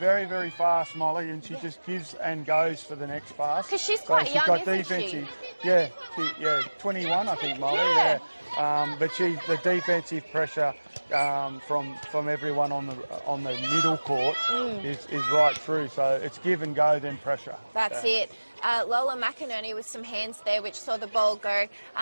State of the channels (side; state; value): both; inverted; correlation -1.00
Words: very fast, Molly, and she just gives and goes for the next pass. Because she's quite young, isn't she? Yeah, 21, I think, Molly. Yeah. But the defensive pressure from everyone on the middle court is right through. So it's give and go, then pressure. That's it. Lola McInerney with some hands there, which saw the ball go